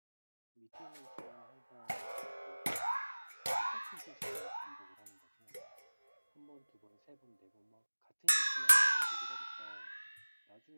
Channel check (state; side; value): inverted; both; correlation -1.00